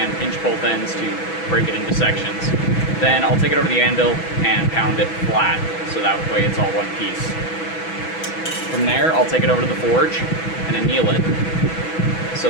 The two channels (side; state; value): right; late; 6.1 ms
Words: pinch both ends to break it into sections. Then I'll take it over the anvil and pound it flat, so that way it's all one piece. From there I'll take it over to the forge and anneal it, so